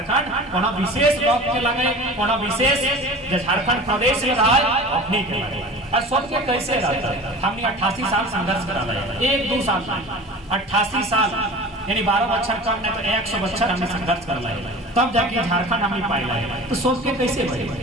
कोनो विशेष लोग के लगे, कोनो विशेष जो झारखंड प्रदेश में रहा अपनी के लगे और सब के कैसे रहता है। हमने 88 साल संघर्ष करा है, 1-2 साल 88 साल यानी 12 बच्चर कम नहीं तो 100 बच्चर हमने संघर्ष कर लाए, तब जाके झारखंड हमने पाई लाए। तो सब के कैसे बने,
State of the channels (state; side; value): normal; both; correlation 0.38